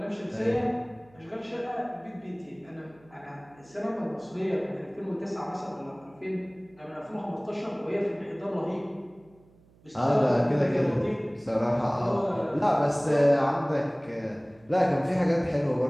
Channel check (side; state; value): right; noise; hum, 29 dB below the sound